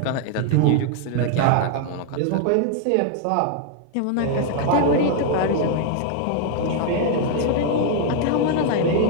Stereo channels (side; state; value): both; different; correlation 0.00